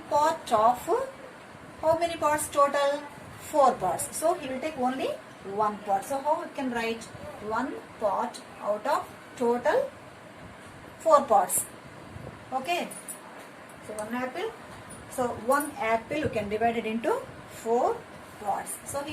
part of how many parts total? Four parts. So he will take only one part. So how we can write one part out of total four parts? Okay. So one apple. So one apple you can divide it into four parts. So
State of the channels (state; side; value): identical; both; correlation 1.00